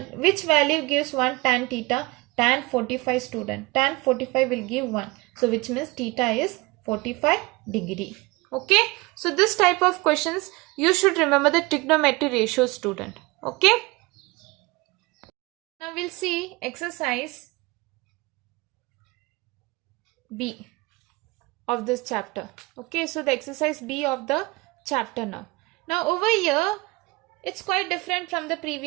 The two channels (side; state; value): left; quieter; 23.6 dB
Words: which value gives 1 tan theta? Tan 45 student. Tan 45 will give 1. So which means theta is 45 degree. Okay. So this type of questions you should remember the trigonometry ratio student. Okay. Now we'll see exercise B of this chapter. Okay. So the exercise B of the chapter now. Now over here, it's quite different from the